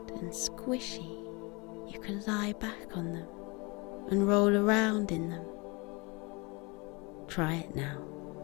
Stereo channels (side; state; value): right; quieter; 28.0 dB